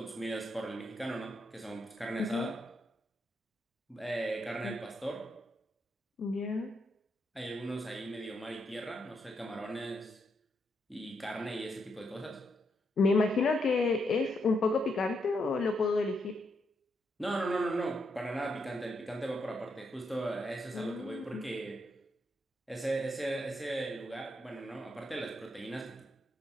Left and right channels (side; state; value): both; normal; correlation 0.79